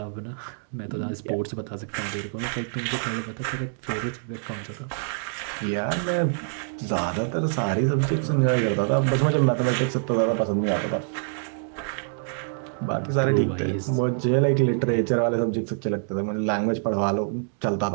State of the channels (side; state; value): left; silent; digital silence